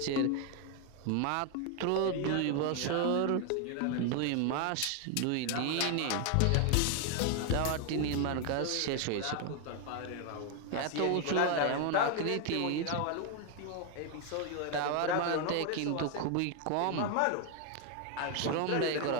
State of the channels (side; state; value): both; different; correlation 0.01